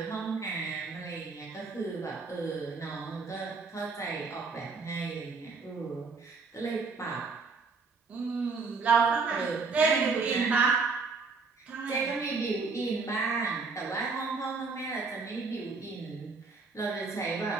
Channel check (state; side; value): quieter; left; 4.4 dB